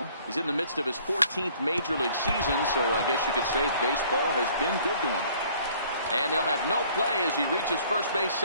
He's in the midst of his 14th major league season, so I guess you could say baseball has been good to him. And they'll have no play as he reaches first base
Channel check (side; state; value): both; inverted; correlation -0.56